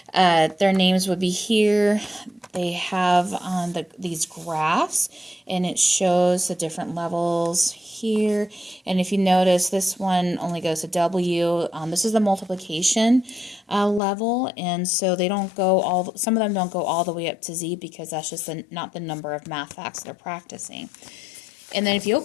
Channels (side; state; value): right; drops out; at 14.0 s